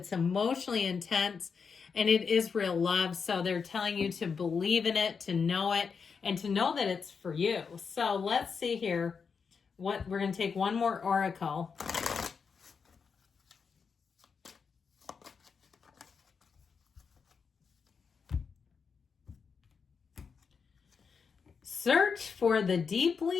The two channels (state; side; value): quieter; right; 5.8 dB